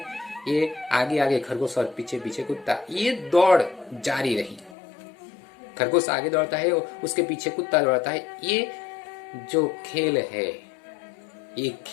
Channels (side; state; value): right; drops out; at 4.8 s